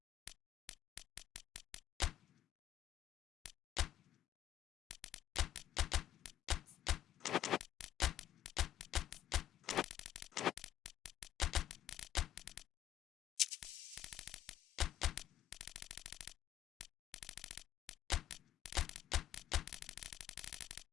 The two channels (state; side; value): quieter; right; 11.9 dB